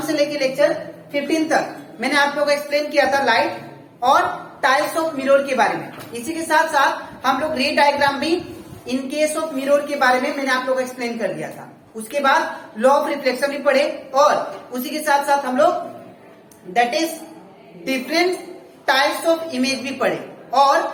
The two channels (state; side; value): identical; both; correlation 1.00